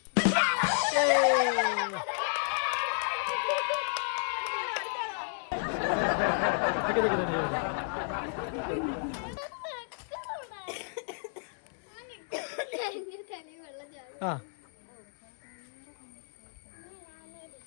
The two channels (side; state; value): right; silent; digital silence